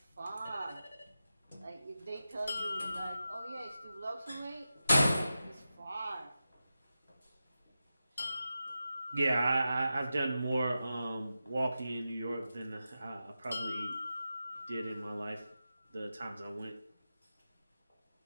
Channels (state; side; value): inverted; both; correlation -0.91